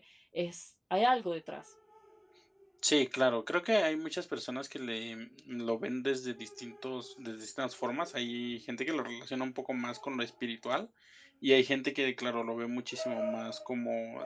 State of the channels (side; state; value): both; identical; correlation 1.00